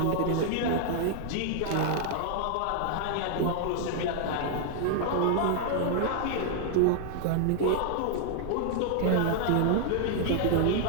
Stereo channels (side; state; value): both; different; correlation -0.01